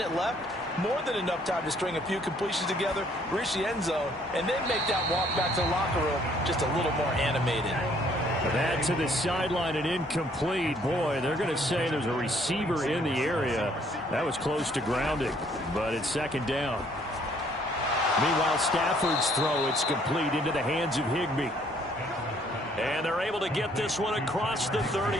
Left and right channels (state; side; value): normal; both; correlation 0.63